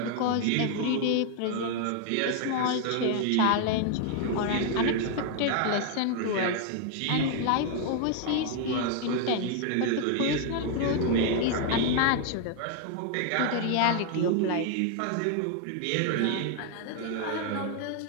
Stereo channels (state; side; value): different; both; correlation 0.00